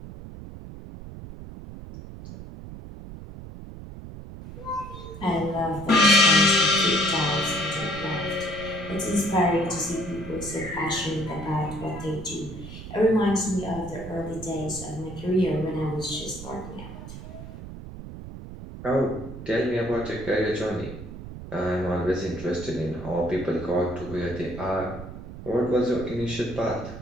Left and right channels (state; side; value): noise; right; rumble, 12 dB below the sound